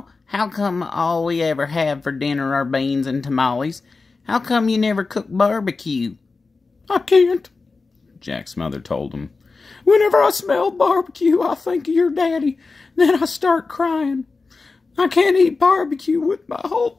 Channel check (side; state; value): right; quieter; 4.1 dB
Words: how come all we ever have for dinner are beans and tamales? How come you never cook barbecue?" "I can't," Jack's mother told him. "Whenever I smell barbecue, I think of your daddy. Then I start crying. I can't eat barbecue with my whole